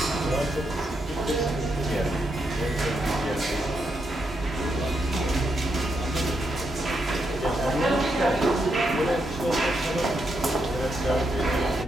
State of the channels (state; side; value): normal; both; correlation 0.81